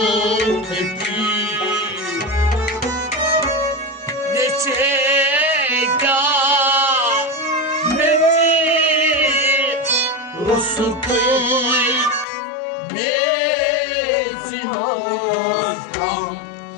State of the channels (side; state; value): right; drops out; at 12.2 s